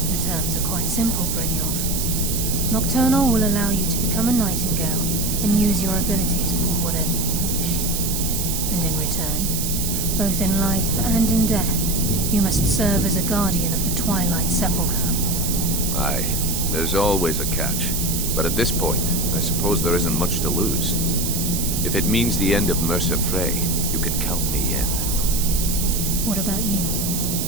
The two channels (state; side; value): noise; right; hiss, 2 dB below the sound